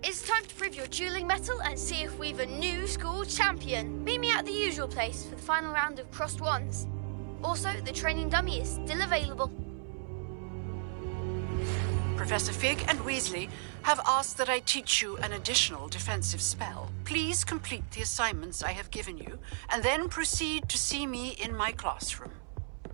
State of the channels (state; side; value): silent; left; 55 dB below the other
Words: It's time to prove your dueling mettle and see if we've a new school champion. Meet me at the usual place for the final round of crossed wands. Also, the training dummy is still available. Professor Fig and Weasley have asked that I teach you an additional defensive spell. Please complete the assignments I have given you, and then proceed to see me in my classroom.